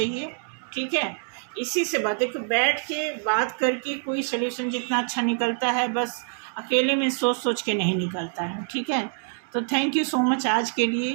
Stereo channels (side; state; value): left; silent; 61 dB below the other